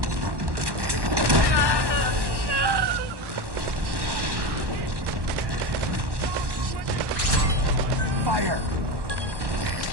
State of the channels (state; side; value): late; left; 1.1 ms